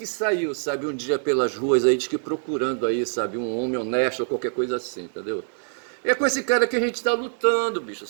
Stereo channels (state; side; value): silent; left; 55 dB below the other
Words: saiu, sabe, um dia pelas ruas aí, diz que procurando aí, sabe, um homem honesto ou qualquer coisa assim, entendeu? É com esse cara que a gente está lutando, bicho,